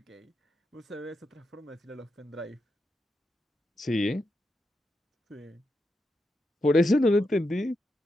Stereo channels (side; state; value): both; normal; correlation 0.85